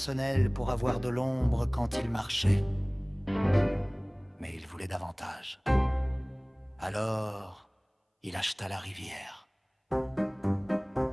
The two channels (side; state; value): both; identical; correlation 1.00